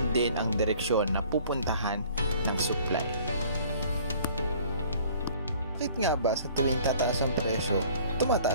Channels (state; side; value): inverted; both; correlation -0.53